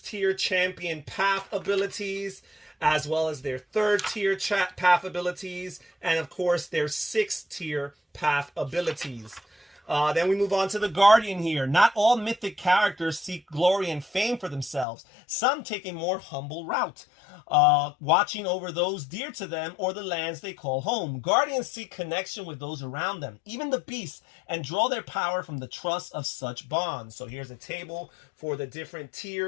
tier champion path abilities, as well as their third tier path abilities, and of course their 6th tier path abilities. Then we move on to the Guardian here. Not all mythic characters seek glory and fame for themselves. Some take a more humble route, watching over those dear to them or the lands they call home. Guardians seek connection with those around them, even the beasts, and draw their power from the trust of such bonds. So here's a table for the different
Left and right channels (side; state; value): right; drops out; at 14.9 s